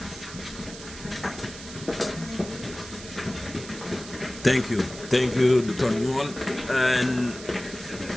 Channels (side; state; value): right; noise; hiss, 14 dB below the sound